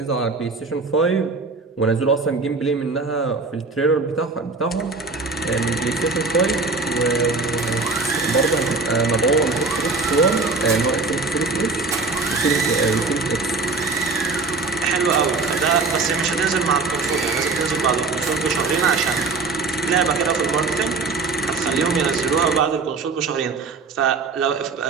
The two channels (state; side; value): quieter; left; 4.0 dB